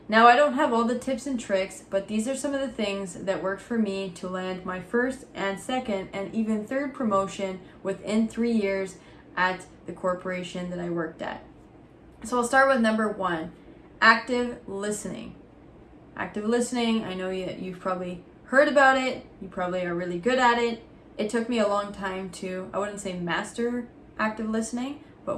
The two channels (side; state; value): both; identical; correlation 1.00